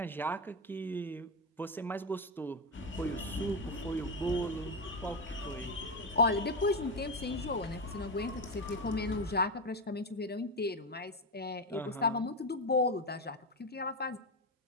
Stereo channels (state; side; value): normal; both; correlation 0.12